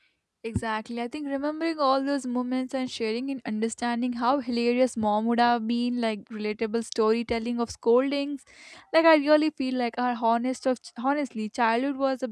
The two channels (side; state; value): both; identical; correlation 1.00